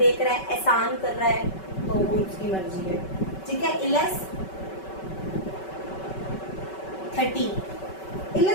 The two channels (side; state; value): right; late; 5.3 ms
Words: रहा है, एहसान कर रहा है तो वो उसकी मर्जी है। ठीक है। इलस 13,